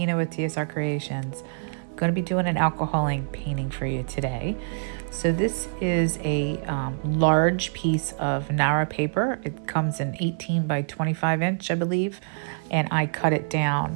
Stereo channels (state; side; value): silent; left; digital silence